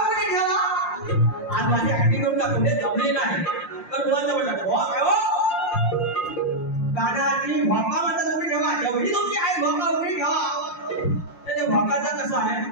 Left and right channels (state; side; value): late; right; 5.7 ms